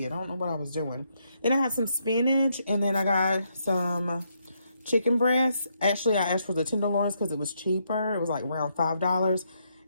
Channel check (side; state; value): both; inverted; correlation -0.77